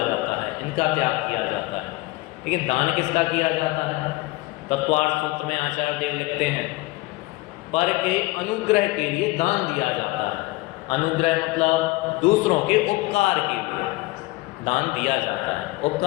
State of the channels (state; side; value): quieter; right; 21.1 dB